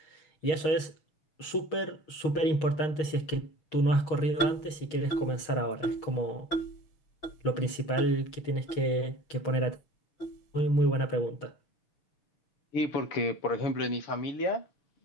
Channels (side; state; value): right; late; 6.4 ms